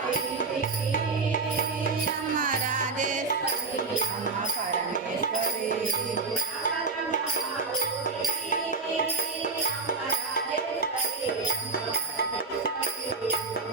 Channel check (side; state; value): left; quieter; 4.2 dB